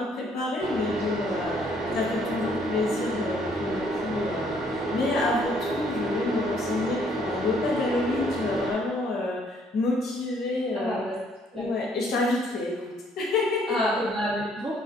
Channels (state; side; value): normal; both; correlation 0.65